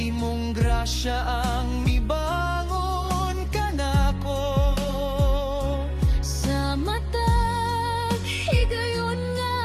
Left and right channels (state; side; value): identical; both; correlation 1.00